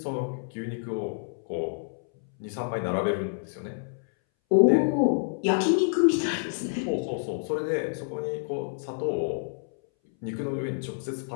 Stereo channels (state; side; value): silent; right; 59 dB below the other